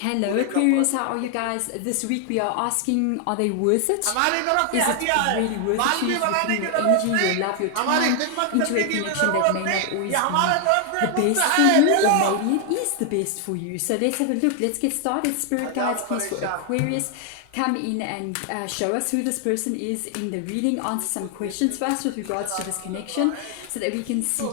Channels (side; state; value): both; different; correlation 0.00